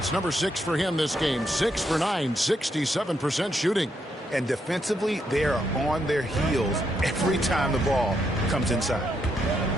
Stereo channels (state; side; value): normal; both; correlation 0.78